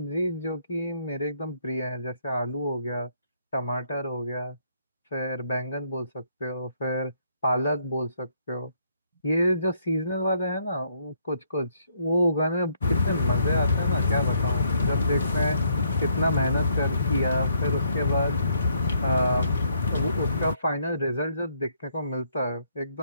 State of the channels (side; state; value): both; inverted; correlation -0.70